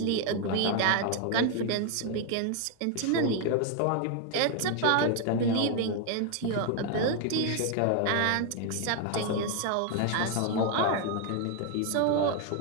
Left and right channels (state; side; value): different; both; correlation 0.01